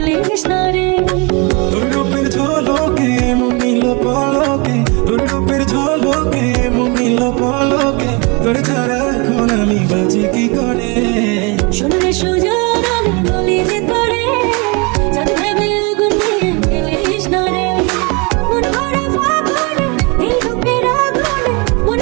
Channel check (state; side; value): quieter; left; 30.5 dB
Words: না রে। তোর রূপের ঝলকে মন নিল পলকে, তোর রূপের ঝলকে মন নিল পলকে, তোর ছাড়া এখন আমি বাঁচি কি করে। শোনে সুজন আমি বলি যে তোরে চাঁদ ভেবে আগুন নিয়ে ফেলিস না রে। মন ভরা ফাগুনে এই রূপের আগুনে, মন